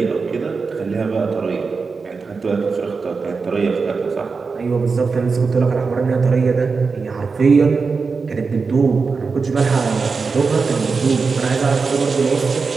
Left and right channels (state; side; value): quieter; left; 4.7 dB